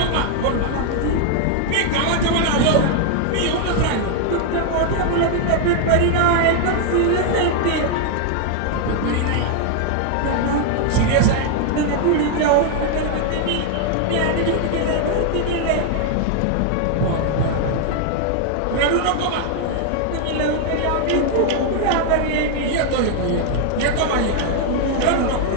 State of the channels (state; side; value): different; both; correlation 0.00